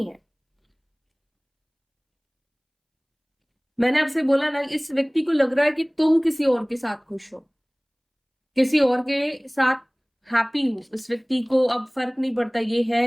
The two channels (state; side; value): identical; both; correlation 1.00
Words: है। मैंने आपसे बोला ना, इस व्यक्ति को लग रहा है कि तुम किसी और के साथ खुश हो, किसी और के साथ हैप्पी हो। इस व्यक्ति को अब फर्क नहीं पड़ता ये है